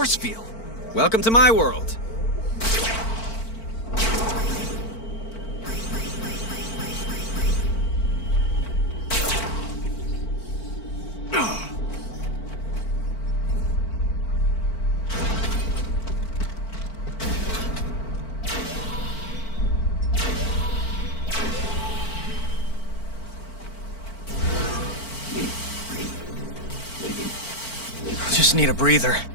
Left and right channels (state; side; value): late; right; 4.5 ms